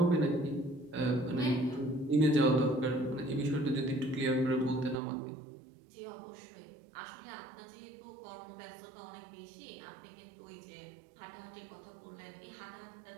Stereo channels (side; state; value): left; drops out; at 5.0 s